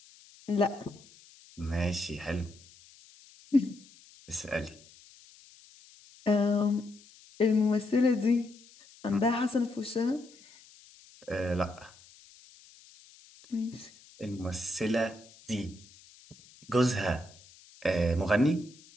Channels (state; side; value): noise; left; hiss, 24 dB below the sound